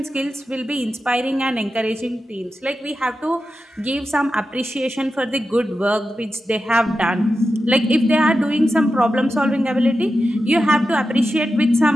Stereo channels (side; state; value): both; normal; correlation 0.91